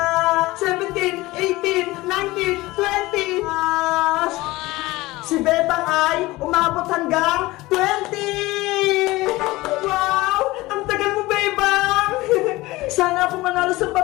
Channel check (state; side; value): quieter; right; 19.7 dB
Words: 17, 18, 19, 20. Si Bebang ay umabot hanggang 20! Wow! Ang tagal mo, Bebang! Sana ako manalo sa